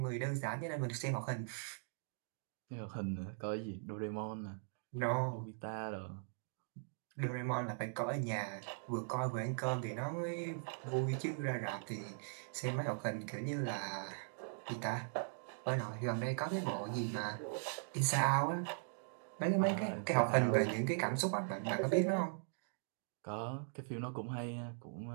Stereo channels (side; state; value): left; silent; digital silence